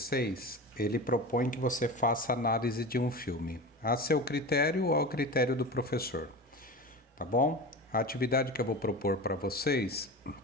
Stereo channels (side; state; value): both; normal; correlation 0.29